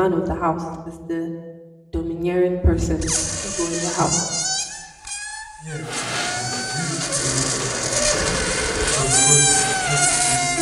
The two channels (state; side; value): identical; both; correlation 1.00